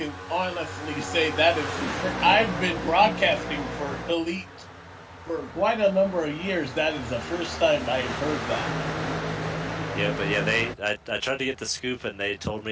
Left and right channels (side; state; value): both; identical; correlation 1.00